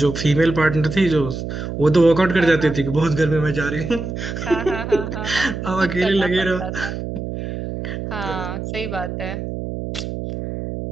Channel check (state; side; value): noise; right; hum, 6 dB below the sound